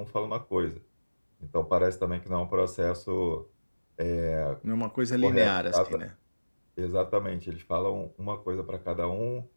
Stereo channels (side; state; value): both; inverted; correlation -1.00